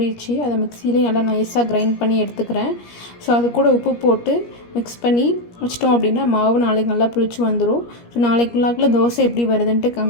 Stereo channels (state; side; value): late; right; 17 ms